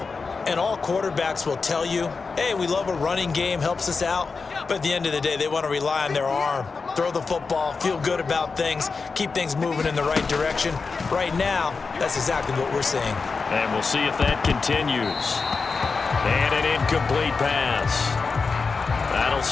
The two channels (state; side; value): quieter; right; 4.6 dB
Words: And all quarterbacks will tell you, hey, we love a running game, helps us out. But at the end of the day, they want to rely on their arm. Throw the football, feel good about things, keep things moving in the right direction. Right now, that's exactly what we're seeing. And we'll see if that continues. And an incomplete pass. That'll